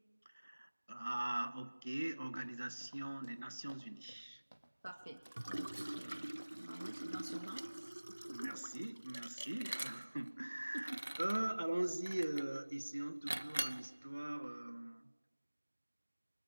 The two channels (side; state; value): both; inverted; correlation -1.00